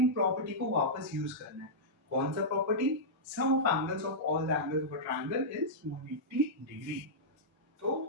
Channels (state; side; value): normal; both; correlation -0.11